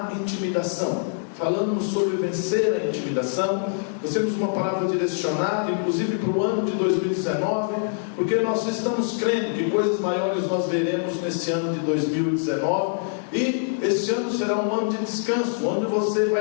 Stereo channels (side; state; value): right; silent; 62 dB below the other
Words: intimidação. Falamos sobre vencer a intimidação. Nós temos uma palavra direcionada, inclusive para o ano de 2019, porque nós estamos crendo que coisas maiores nós veremos nesse ano de 2019. E este ano será um ano de descanso, onde você